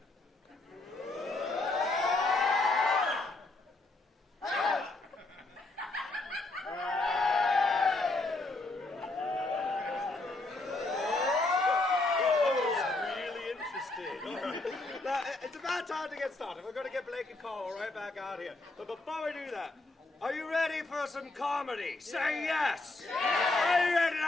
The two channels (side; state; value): right; quieter; 3.1 dB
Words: Time to get started. We're going to get Blake and Carl right back out here. But before we do that, are you ready for some comedy? Say yes! Are you ready